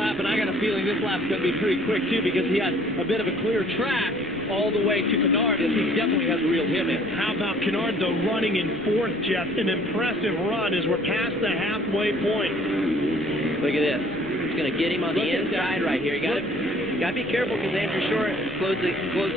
and I got a feeling this lap's going to be pretty quick, too, because he has a bit of a clear track all the way to Kennard, and he definitely has reeled him in. How about Kennard, though, running in 4th, Jeff? An impressive run as we're past the halfway point. Look at this. It's going to get him on the inside right here. You got to be careful because Andrew Short closed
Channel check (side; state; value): left; noise; rumble, 22 dB below the sound